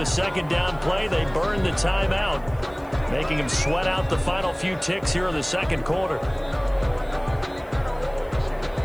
2nd down play, they burn the timeout, making him sweat out the final few ticks here in the 2nd quarter.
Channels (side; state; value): left; noise; hiss, 29 dB below the sound